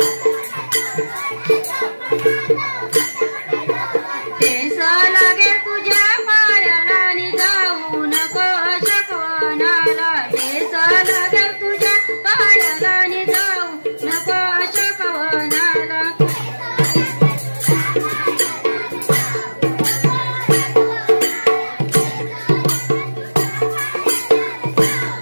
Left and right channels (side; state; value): both; inverted; correlation -1.00